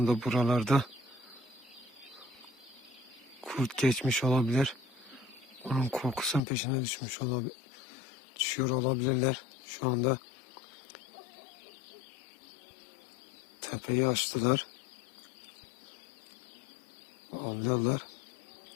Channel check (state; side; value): drops out; right; at 6.4 s